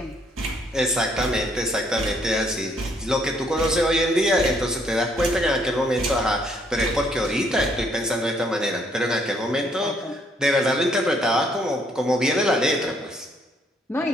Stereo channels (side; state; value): both; normal; correlation 0.68